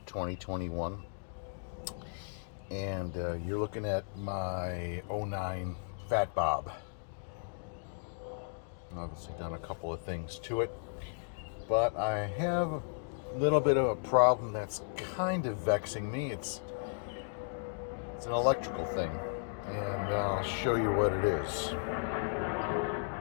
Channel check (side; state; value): right; silent; digital silence